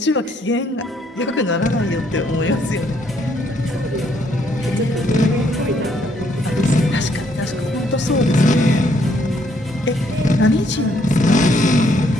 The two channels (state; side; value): normal; both; correlation 0.69